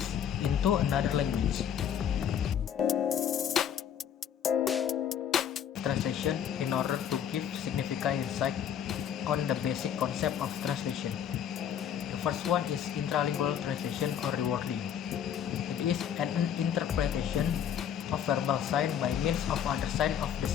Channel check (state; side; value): quieter; right; 8.9 dB